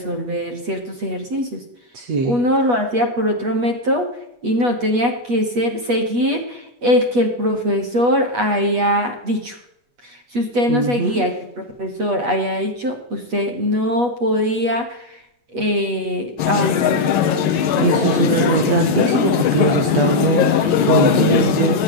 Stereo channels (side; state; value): left; late; 8.2 ms